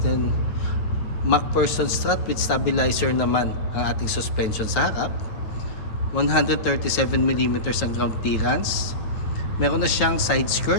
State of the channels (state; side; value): late; right; 9.2 ms